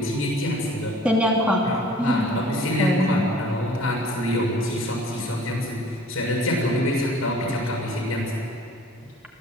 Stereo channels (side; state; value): both; normal; correlation 0.51